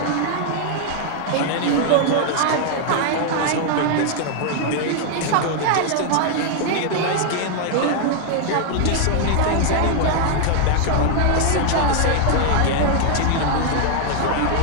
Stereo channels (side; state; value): both; different; correlation 0.00